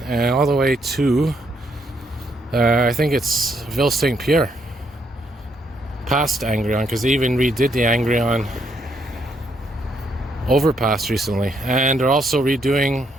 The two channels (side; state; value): both; normal; correlation 0.74